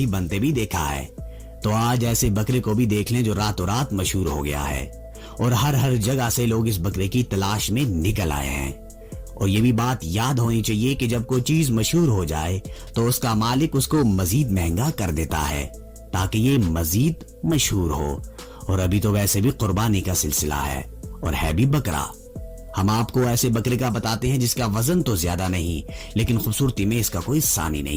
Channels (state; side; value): identical; both; correlation 1.00